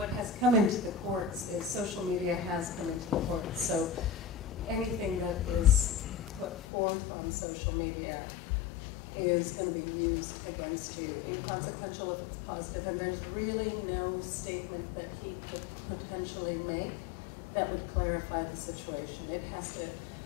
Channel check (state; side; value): drops out; right; at 6.6 s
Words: has come into the courts is social media has come into the courts. So anything that is put forth on social media is going to be used against you, inconsequential if it's positive, and there's really no statement that he could potentially make that would clarify the situation. It has to,